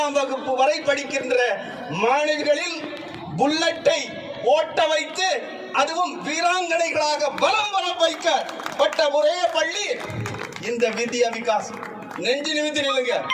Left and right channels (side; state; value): both; identical; correlation 1.00